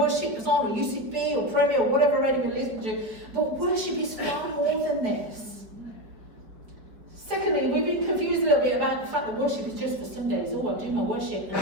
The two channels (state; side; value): late; left; 4.6 ms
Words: is on, or UCB or Premier or whatever radio we listen to. But worship is far more than this. Secondly, we've been confused a little bit about the fact that worship is just for Sundays. Oh, I do my worship.